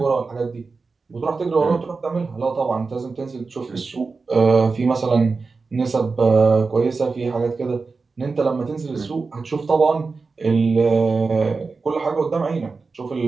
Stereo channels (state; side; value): quieter; left; 4.3 dB